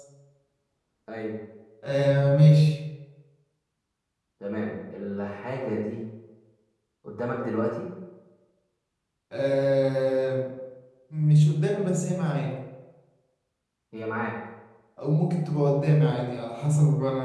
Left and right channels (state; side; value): identical; both; correlation 1.00